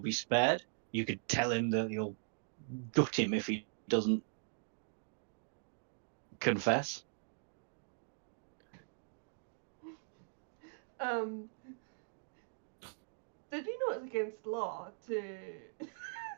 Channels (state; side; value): silent; left; digital silence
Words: be spared. You could tell him that you'll gut him if he doesn't confess. Did you know it's against law to